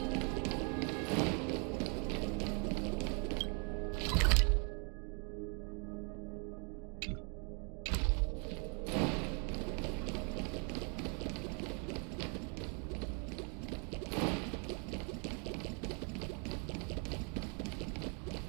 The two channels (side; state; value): left; quieter; 37.5 dB